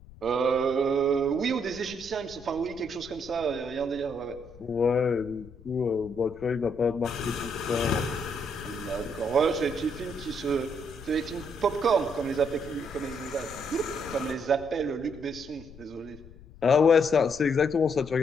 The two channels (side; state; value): left; noise; rumble, 20 dB below the sound